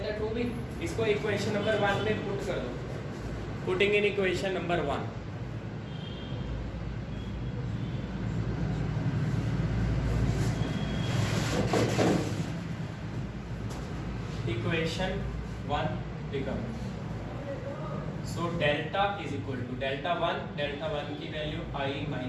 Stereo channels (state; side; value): identical; both; correlation 1.00